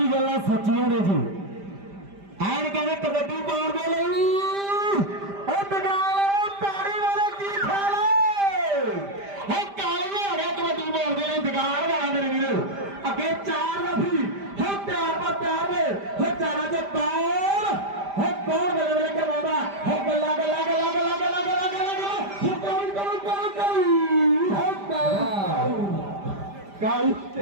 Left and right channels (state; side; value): late; left; 5.0 ms